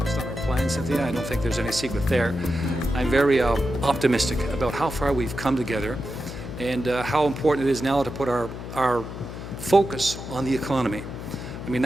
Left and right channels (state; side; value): noise; left; hum, 9 dB below the sound